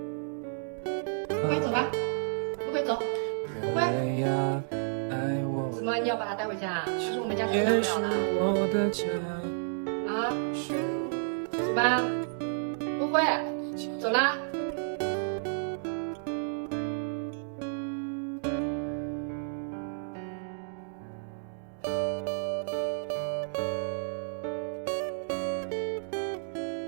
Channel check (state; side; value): silent; left; digital silence